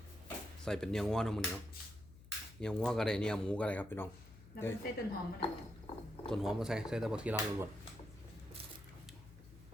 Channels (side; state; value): left; noise; hum, 19 dB below the sound